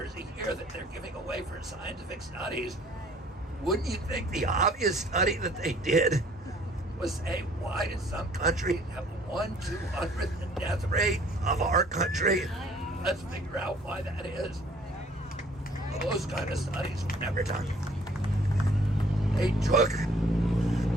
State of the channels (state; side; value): normal; both; correlation 0.57